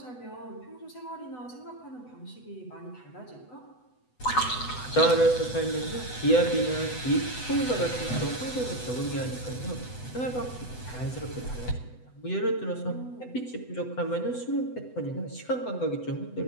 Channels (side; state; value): right; late; 8.0 ms